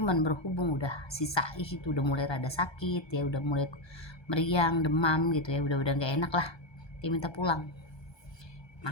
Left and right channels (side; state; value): right; late; 1.2 ms